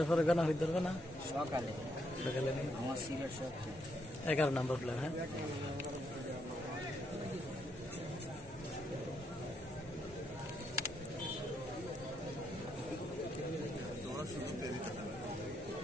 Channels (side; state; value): both; normal; correlation 0.77